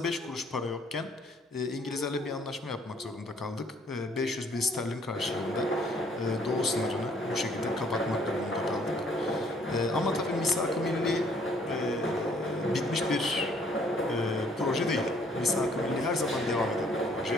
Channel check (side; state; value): both; normal; correlation 0.62